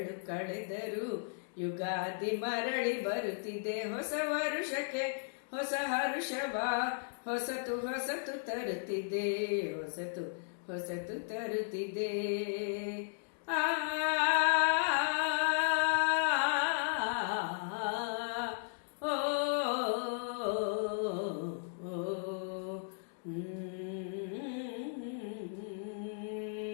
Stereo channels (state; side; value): silent; right; digital silence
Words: ಕಳೆದರು ಯುಗಾದಿ ಮರಳಿ ಬರುತ್ತಿದೆ. ಹೊಸ ವರುಷಕ್ಕೆ ಹೊಸ ಹರುಷವ ಹೊಸತು ತರುತ್ತಿದೆ. ಹೊಸತು ತರುತ್ತಿದೆ. ಆ